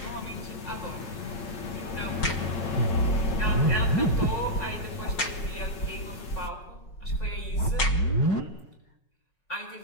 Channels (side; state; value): right; late; 5.5 ms